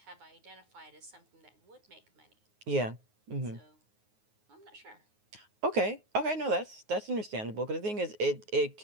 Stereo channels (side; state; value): left; late; 9.5 ms